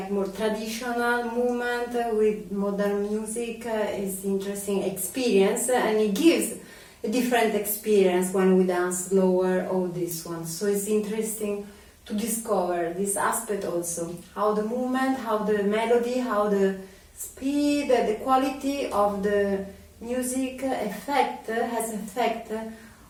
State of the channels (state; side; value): identical; both; correlation 1.00